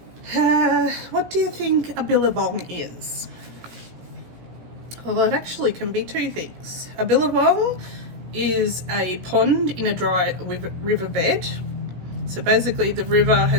What do you think a billabong is? Well, it actually can be two things. A billabong is a pond in a dry riverbed. So basically the river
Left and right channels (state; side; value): late; left; 16 ms